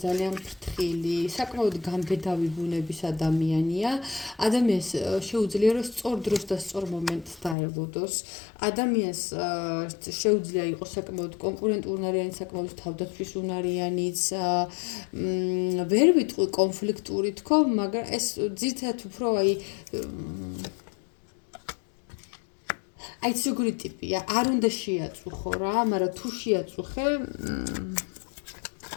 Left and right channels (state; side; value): drops out; right; at 7.6 s